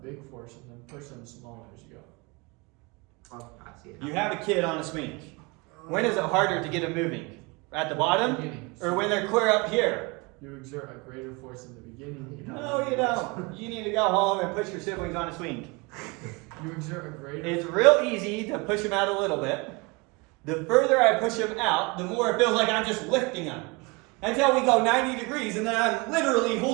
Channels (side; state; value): left; quieter; 27.6 dB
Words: big force and then push them smaller as you go. Oh, I see it. You have a kid on a swing. When is it harder to get them moving? At the bottom? Beginning. Or when they're clear up here? You exert a greater force in the beginning. No, you don't. You need to go home and push your siblings on a swing. You exert a greater. It's real easy to push them out a little bit. The further I push them out, the more it feels like I'm just lifting them. Until we go 90 degrees and then I'm literally